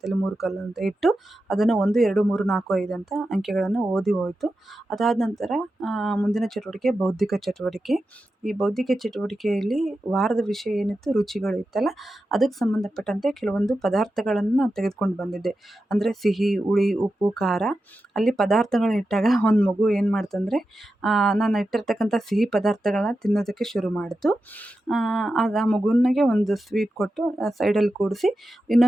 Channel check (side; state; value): both; normal; correlation 0.91